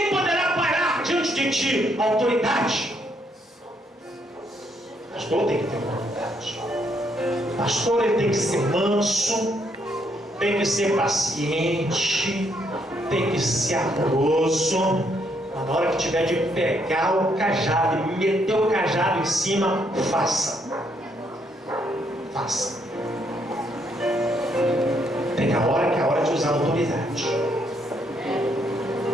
poderá parar diante de ti. Autoridade. Pastor tem que ter autoridade. Pastor ele tem que ser manso, tem que ser paciente, tem que ser amoroso. Mas na hora que tiver de pegar o cajado e meter o cajado em cima, faça. Faça. Tem a hora que é a hora de usar a autoridade.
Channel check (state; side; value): normal; both; correlation 0.73